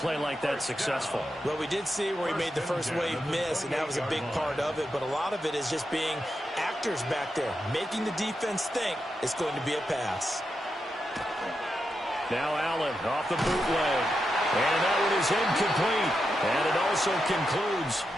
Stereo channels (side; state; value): both; normal; correlation 0.86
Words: like that successful? Well, we did see where he made the first wave miss, and that was a big part of it. But a lot of it is just being actors back there, making the defense think it's going to be a pass. Now Allen off the bootleg. And that one is incomplete. And it also concludes